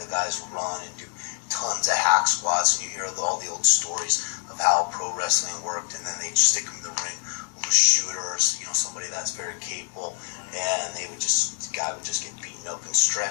guys run and do tons of hack squats, and you hear all the old stories of how pro wrestling worked, and then they'd stick them in the ring with a shooter or somebody that's very capable, and the guy would just get beaten up and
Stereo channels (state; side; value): silent; right; 61 dB below the other